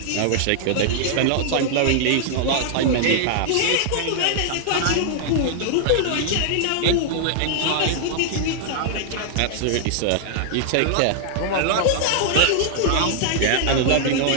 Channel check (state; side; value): different; both; correlation -0.01